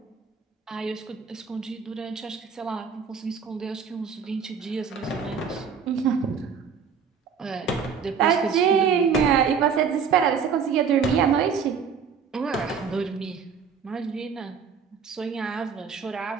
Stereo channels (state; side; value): quieter; left; 6.4 dB